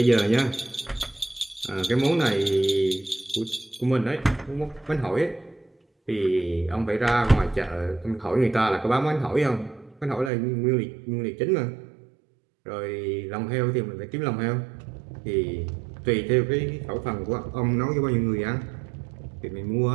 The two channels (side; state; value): left; drops out; at 10.3 s